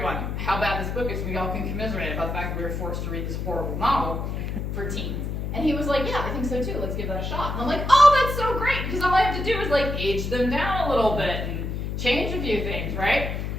how bad this book is. We all can commiserate about the fact that we were forced to read this horrible novel for teens. And he was like, yeah, I think so too. Let's give that a shot. And I'm like, oh, that's so great, because all I have to do is like age them down a little bit and change a few things, right?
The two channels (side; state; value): left; noise; hum, 3 dB below the sound